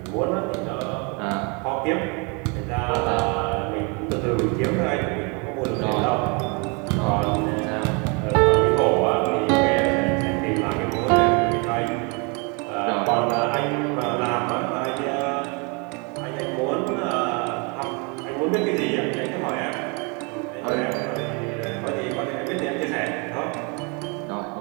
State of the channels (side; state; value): left; quieter; 32.1 dB